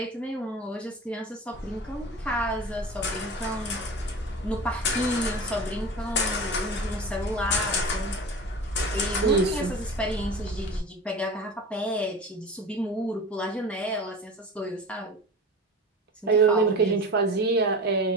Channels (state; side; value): normal; both; correlation 0.33